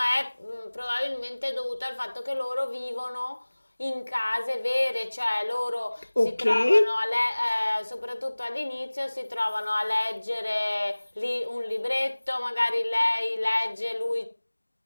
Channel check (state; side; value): inverted; both; correlation -1.00